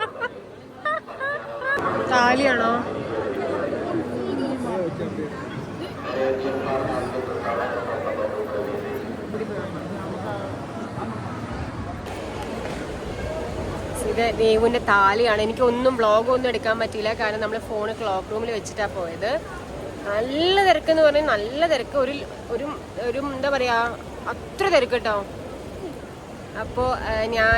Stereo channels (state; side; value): identical; both; correlation 1.00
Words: താലിയാണോ? ഇത് ദേവുവിന്റെ താലിയാണ്. എനിക്കൊന്നും വ്ളോഗൊന്നും എടുക്കാൻ പറ്റിയില്ല, കാരണം നമ്മൾ ഫോണ് ക്ലോക്ക് റൂമിൽ വെച്ചിട്ടാണ് പോയത്. നല്ല തിരക്കെന്ന് പറഞ്ഞാൽ നല്ല തിരക്ക്. ഒരു എന്താ പറയാ, അത്ര തിരക്ക് കേട്ടോ. അപ്പോൾ